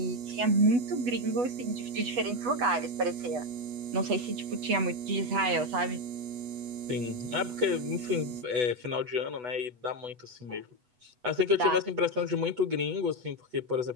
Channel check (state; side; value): late; left; 8.1 ms